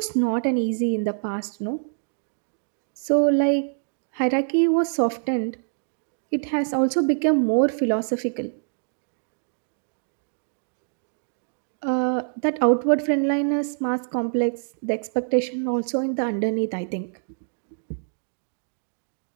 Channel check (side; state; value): left; silent; digital silence